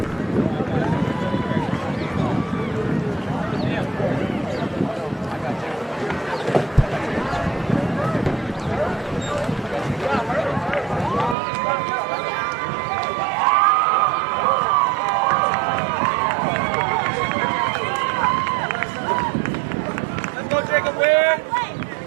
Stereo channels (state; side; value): drops out; left; at 11.4 s